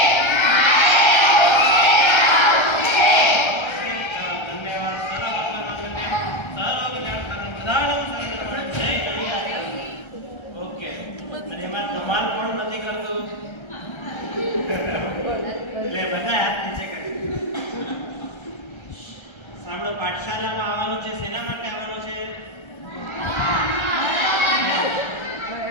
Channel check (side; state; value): right; late; 1.3 ms